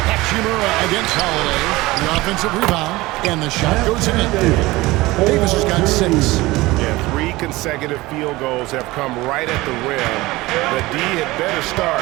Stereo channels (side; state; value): left; quieter; 20.0 dB